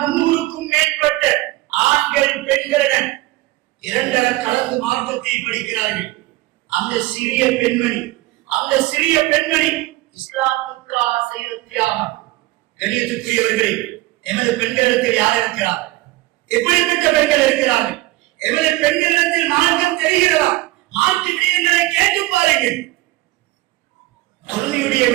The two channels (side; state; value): left; quieter; 18.9 dB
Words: 300க்கும் மேற்பட்ட ஆண்கள் பெண்களுடன் இரண்டர கலந்து மார்க்கத்தை படிக்கிறார்கள். அந்த சிறிய பெண்மணி இஸ்லாமுக்காக செய்த தியாகம். கண்ணியத்துக்குரியவர்களே, எமது பெண்களிடத்தில் யார் இருக்கிறார்? எப்படிப்பட்ட பெண்கள் இருக்கிறார்கள்? எமது பெண்களிடத்தில் மார்க்கம் தெரிகிறதா? மார்க்க விடயங்களை கேட்டு பாருங்கள். தொழுகையுடைய